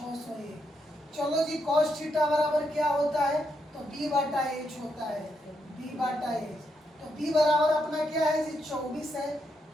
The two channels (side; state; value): both; normal; correlation 0.80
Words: चलो जी, cos थीटा बराबर क्या होता है, तो B बटा H होता है, B बटा H। तो B बराबर अपना क्या है जी, 24 है,